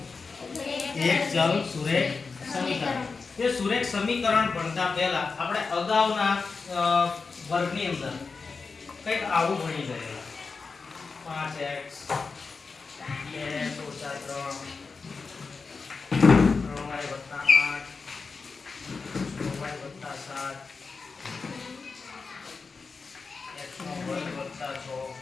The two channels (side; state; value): right; quieter; 4.6 dB